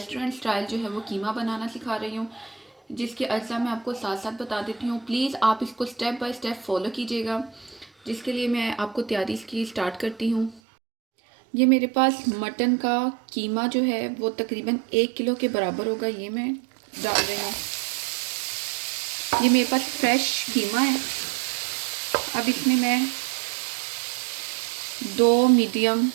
स्टाइल जो है वो कीमा बनाना सिखा रही हूँ, जिसके अज्जा मैं आपको साथ साथ बता देती हूँ। प्लीज़ आप इसको स्टेप बाय स्टेप फॉलो कीजिएगा, जिसके लिए मैं आपको तैयारी इसकी स्टार्ट करती हूँ। ये मेरे पास मटन का कीमा जो है वो तकरीबन 1 किलो के बराबर होगा। ये मैं डाल रही हूँ। ये मेरे पास फ्रेश कीमा है। अब इसमें मैं 2 मीडियम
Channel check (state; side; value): drops out; left; at 10.6 s